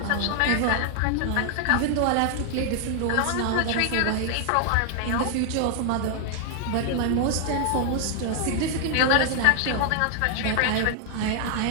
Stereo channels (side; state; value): both; different; correlation 0.00